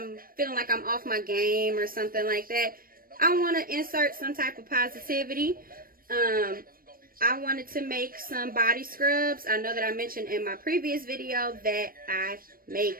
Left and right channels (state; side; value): late; left; 0.42 ms